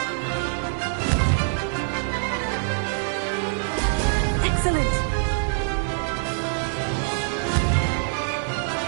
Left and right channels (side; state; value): left; silent; digital silence